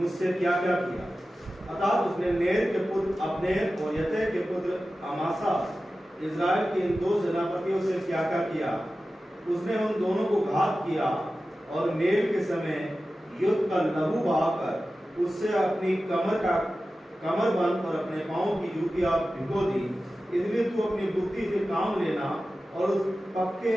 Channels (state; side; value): normal; both; correlation 0.94